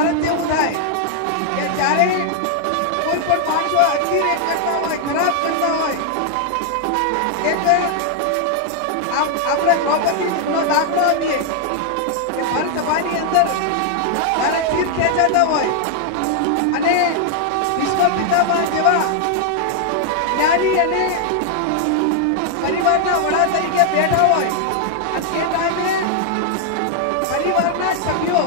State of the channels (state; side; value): different; both; correlation 0.00